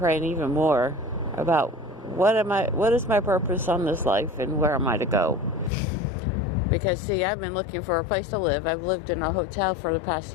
even more about what is my purpose on this life, and where am I to go? Because see, I've been looking for a place to live. I've lived in a hotel for the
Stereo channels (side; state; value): right; drops out; at 5.7 s